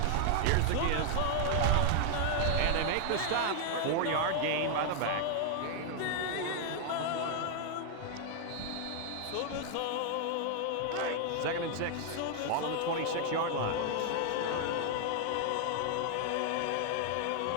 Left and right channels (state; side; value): different; both; correlation 0.00